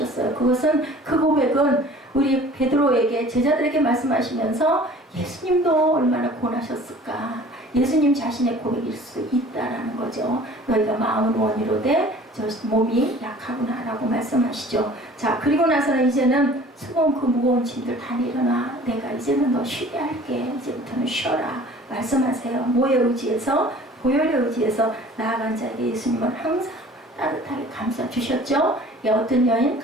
그것은 그 고백은 우리 베드로에게 제자들에게 말씀하시면서 예수님도 얼마나 고나셨을까 예수님 자신의 고백일 수 있다라는 거죠. 너희가 마음은 원이로되 저 몸이 약하구나 라고 말씀하시죠. 자, 그리고 나서는 이제는 수고한 그 무거운 짐들 다 내려놔. 내가 이제는 너 쉬게 할게. 이제부터는 쉬어라. 말씀하세요. 뭐에 의지해서? 보혈에 의지해서 나아간 자에게 예수님은 항상 따뜻하게 감싸주셨죠. 어떤 여인?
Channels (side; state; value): both; normal; correlation 0.48